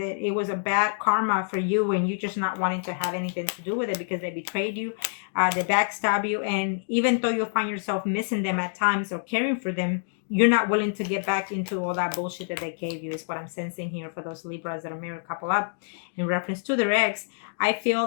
it was a bad karma for you, and you just not wanting to have anything to do with it because they betrayed you, they backstab you, and even though you find yourself missing them at times or caring for them, you're not willing to get back into all that bullshit that they gave you, is what I'm sensing here for those Libras that are married couple up in reference to their ex. I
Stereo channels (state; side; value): silent; right; digital silence